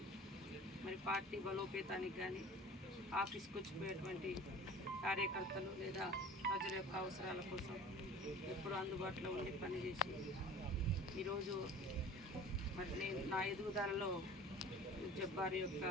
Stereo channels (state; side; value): normal; both; correlation 0.43